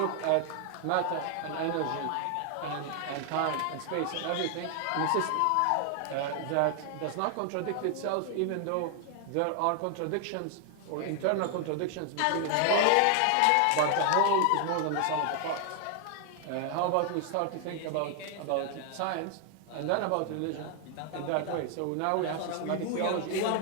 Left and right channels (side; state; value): both; different; correlation 0.00